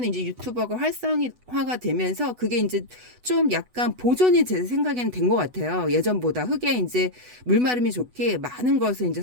이제 유튜버가 활성화가 되면서 그게 이제 좀 약간 보존이 제 생각에는 된 것 같아요. 예전보다 흙에 이제 물마름이 좋게 많은 것을 이제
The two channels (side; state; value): left; late; 8.1 ms